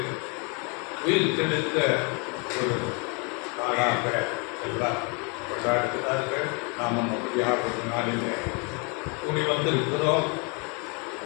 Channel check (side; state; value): right; quieter; 33.3 dB